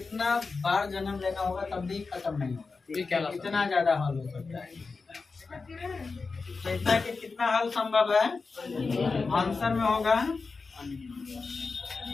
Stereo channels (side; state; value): right; quieter; 4.3 dB